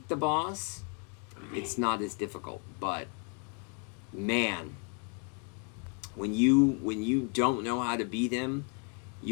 the boss, it's not as difficult. But, man, when you don't know how to beat him,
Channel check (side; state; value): right; quieter; 37.7 dB